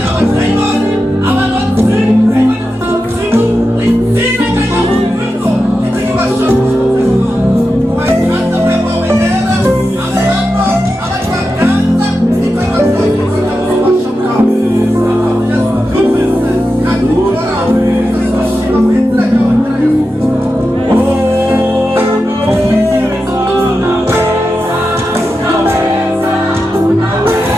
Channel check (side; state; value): both; normal; correlation 0.90